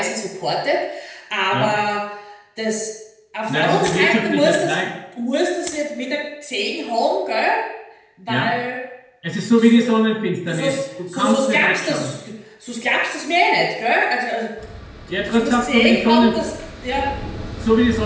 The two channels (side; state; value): both; identical; correlation 1.00